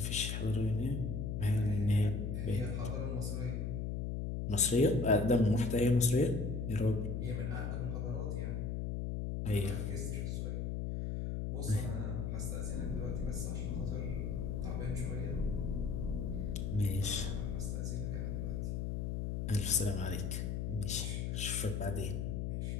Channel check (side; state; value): left; noise; hum, 1 dB below the sound